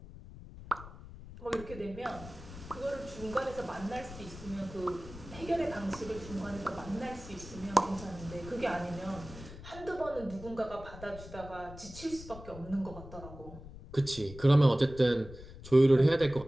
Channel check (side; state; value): left; noise; rumble, 15 dB below the sound